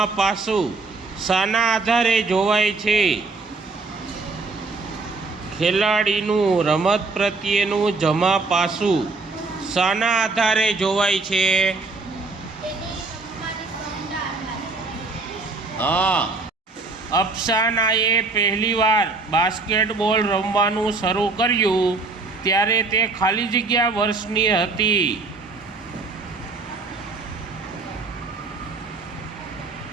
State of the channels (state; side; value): quieter; left; 3.8 dB